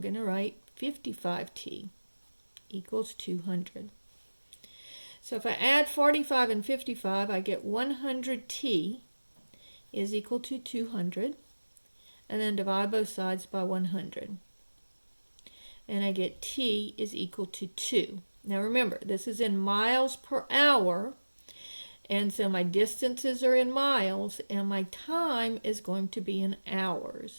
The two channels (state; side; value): inverted; both; correlation -1.00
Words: to write 55T equals 200. So if I add 45 and 55, I get 100T is equal to 200. And then divide both sides by 100. And I get T is equal to 2. Now remember, this is in miles per hour. And so my distances are in miles. And my time is going to be in